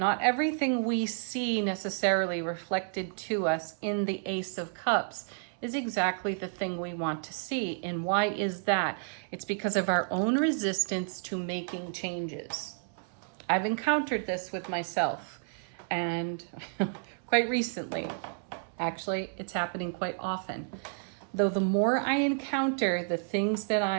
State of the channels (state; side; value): silent; left; 57 dB below the other